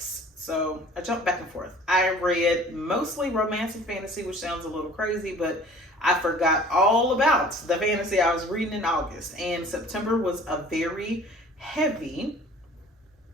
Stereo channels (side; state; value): both; normal; correlation 0.48